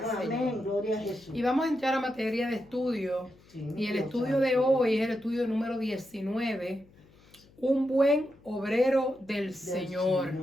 Amén, Señor. gloria a Jesús. Y vamos a entrar a materia de estudio. Sí, Y el Dios estudio de santo. hoy es el estudio número 19, un buen obrero del Señor.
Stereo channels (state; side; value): noise; left; hum, 28 dB below the sound